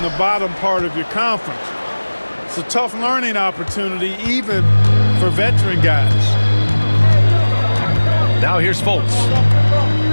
the bottom part of your conference. It's a tough learning opportunity, even for veteran guys. Now here's Fultz.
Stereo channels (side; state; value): both; inverted; correlation -1.00